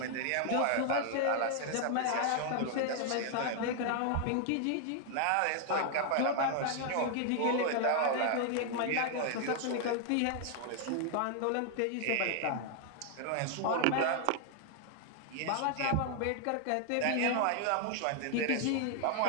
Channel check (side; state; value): both; different; correlation 0.00